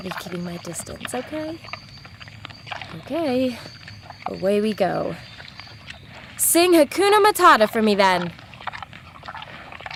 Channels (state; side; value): identical; both; correlation 1.00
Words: be keeping my distance, okay? Okay. Away we go. Sing Hakuna Matata for me, then.